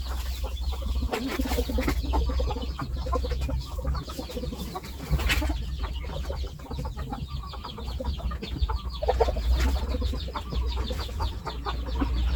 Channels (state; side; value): identical; both; correlation 1.00